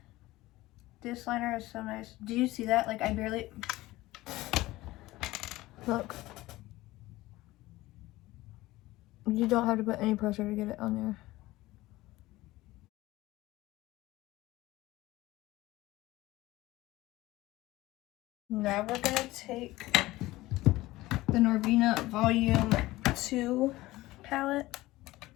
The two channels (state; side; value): quieter; right; 18.2 dB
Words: This liner is so nice. Do you see that? Like, I barely... Look. You don't have to put any pressure to get it on there. Now we're gonna take the Norvina Volume 2 palette.